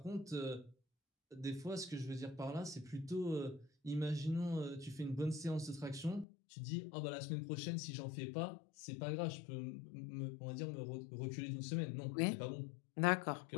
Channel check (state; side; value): drops out; right; at 6.2 s